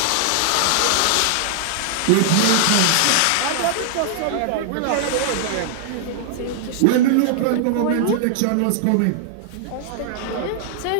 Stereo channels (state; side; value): different; both; correlation -0.01